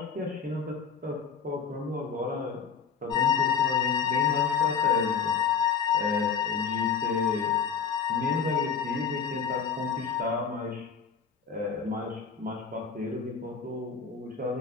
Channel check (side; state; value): right; quieter; 6.4 dB